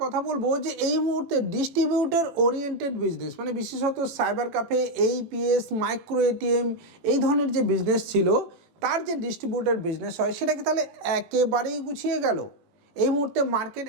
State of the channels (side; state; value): left; late; 18 ms